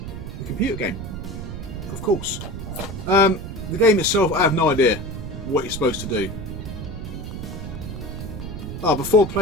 the computer game, of course. The game itself, I have no idea what you're supposed to do. Before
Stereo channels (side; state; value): right; noise; rumble, 8 dB below the sound